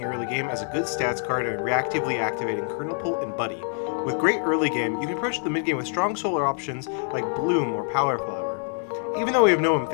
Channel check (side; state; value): right; silent; 61 dB below the other